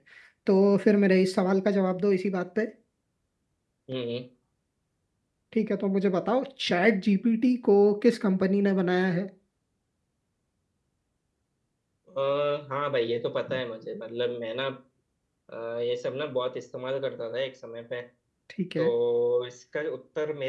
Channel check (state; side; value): identical; both; correlation 1.00